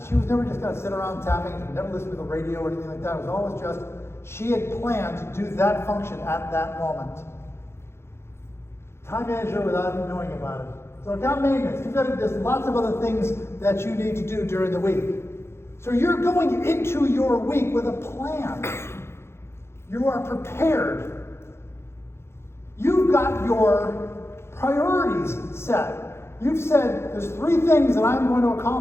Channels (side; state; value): right; late; 0.12 ms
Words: She was never just going to sit around tapping, never listen to the radio or anything like that. It was always just, she had planned to do that function at that moment. Time manager without even knowing about it. So account maintenance, there's lots of other things that you need to do during the week. So you're going into your week with a plan. You are prepared. You've got your priorities set. You've said, there's 3 things that I'm going to